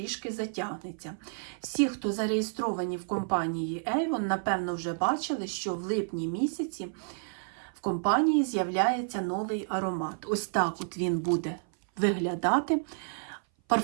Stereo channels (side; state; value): left; silent; 57 dB below the other